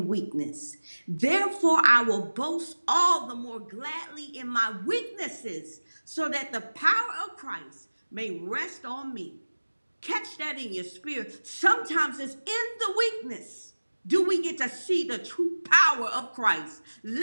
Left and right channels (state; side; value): inverted; both; correlation -1.00